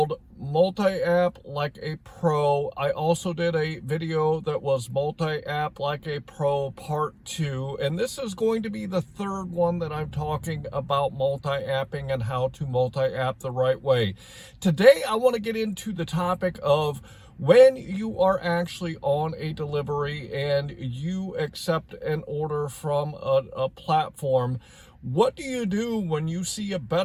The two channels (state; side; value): identical; both; correlation 1.00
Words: Multi-App Like a Pro. I also did a video that was Multi-App Like a Pro Part 2, and this is going to be the third one that I'm talking about multi-apping and how to multi-app the right way. Today I want to get into the topic of when you are actually on a delivery and you accept an order from a platform. What do you do when you see a